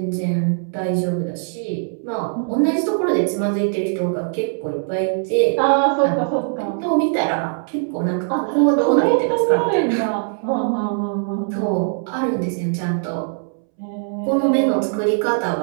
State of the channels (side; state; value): left; silent; 65 dB below the other